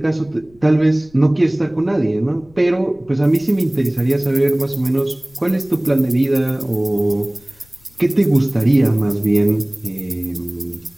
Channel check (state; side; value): noise; left; rumble, 29 dB below the sound